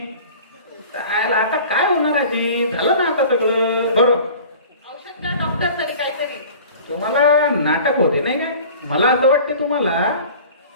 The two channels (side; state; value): both; inverted; correlation -0.43